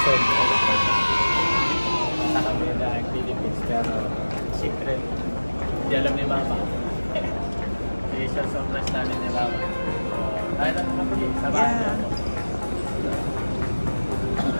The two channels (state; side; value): inverted; both; correlation -1.00